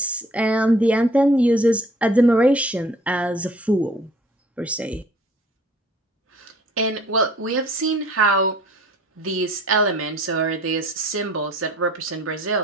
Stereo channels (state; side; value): normal; both; correlation 0.54